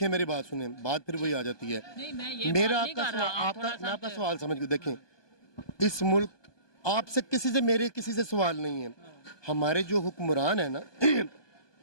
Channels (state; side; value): late; right; 1.2 ms